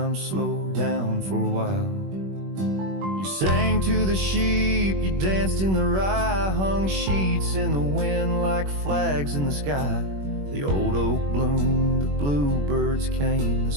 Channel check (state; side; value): late; left; 21 ms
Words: slowed down for a while. You sang to the sheep, you danced in the rye, hung sheets in the wind like flags in the sky. The old oak bloomed, the bluebirds came.